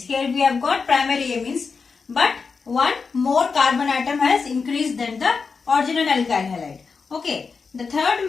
Here we have got primary amines. But one more carbon atom has increased than the original alkyl halide. Okay, the third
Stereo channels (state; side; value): quieter; right; 5.0 dB